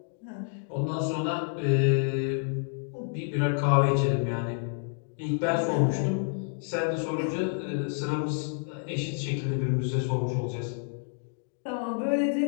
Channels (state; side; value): silent; right; 59 dB below the other